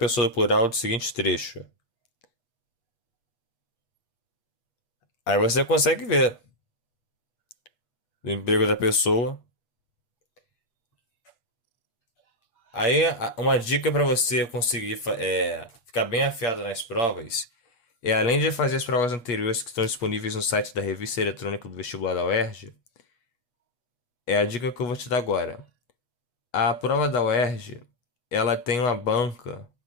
do plural do seguinte trecho. Aí você consegue ver o emprego da pessoa. Aí uma dica para você conseguir ficar bem afiado nas provas é, além de fazer as provas anteriores que estão disponíveis no site da revista eletrônica do vestibular da UERJ, é a dica que eu vou te dar agora. A prova da UERJ, ela tem uma banca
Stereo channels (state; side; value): late; right; 8.3 ms